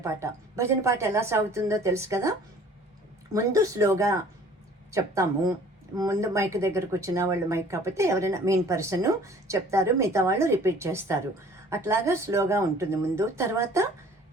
పాట ఎలా సాగుతుందో తెలుసు కదా. ముందు స్లోగా చెప్తాము. ముందు మైక్ దగ్గరకు వచ్చిన వాళ్ళు, మైక్ కాకపోతే ఎవరైనా మెయిన్ పర్సన్ చెప్తారు, మిగతా వాళ్ళు రిపీట్ చేస్తారు. అట్లాగా స్లోగా ఉంటుంది ముందు. తర్వాత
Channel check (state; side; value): normal; both; correlation 0.51